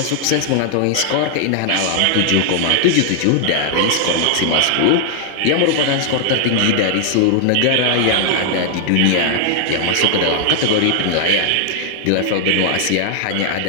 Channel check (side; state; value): both; different; correlation 0.00